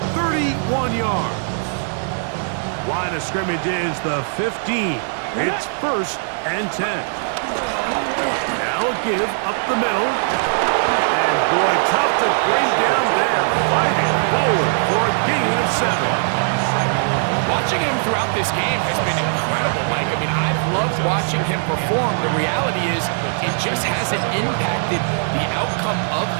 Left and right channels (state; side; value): silent; left; digital silence